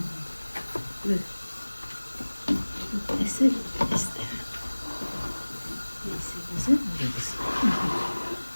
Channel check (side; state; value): both; inverted; correlation -1.00